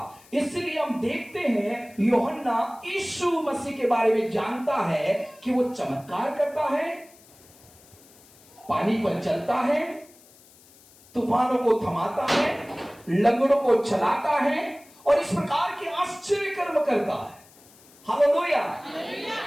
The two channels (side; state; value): left; noise; hiss, 26 dB below the sound